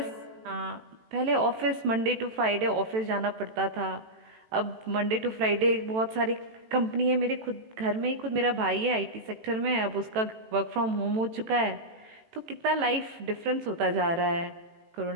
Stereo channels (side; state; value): left; late; 18 ms